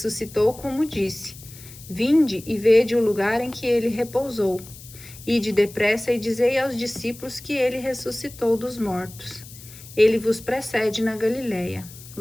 como disse. Vinde e vede o lugar em que ele repousou. Ide depressa e dizei aos discípulos que ele ressuscitou dos mortos. Ele vos precede na Galiléia.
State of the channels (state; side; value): noise; left; hiss, 18 dB below the sound